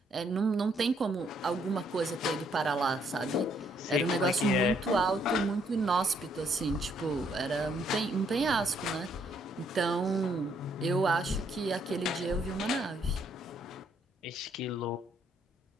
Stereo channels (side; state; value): both; normal; correlation 0.70